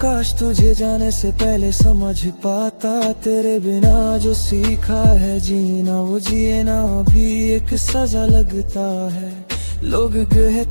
काश तुझे जाने से पहले समझ पाता। तेरे बिना जो सीखा है जीना, वो जिए ना भी एक सजा लगता है। लोग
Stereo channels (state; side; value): inverted; both; correlation -1.00